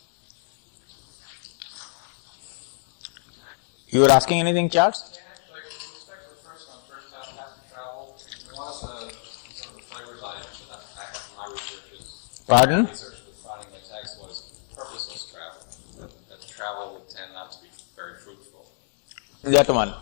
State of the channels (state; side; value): silent; right; 59 dB below the other